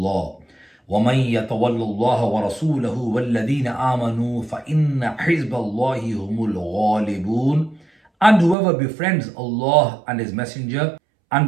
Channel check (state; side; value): drops out; left; at 8.6 s